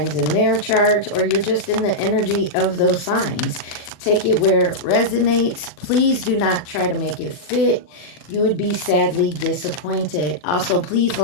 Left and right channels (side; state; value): right; late; 40 ms